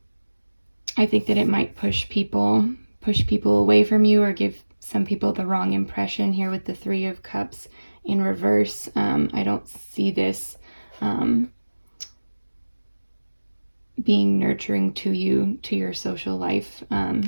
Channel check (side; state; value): both; inverted; correlation -1.00